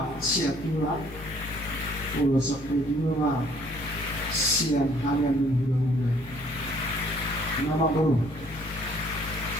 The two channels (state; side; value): normal; both; correlation 0.60